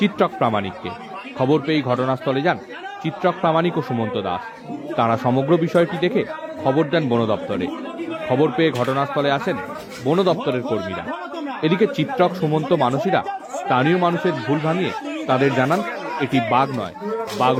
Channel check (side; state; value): both; identical; correlation 1.00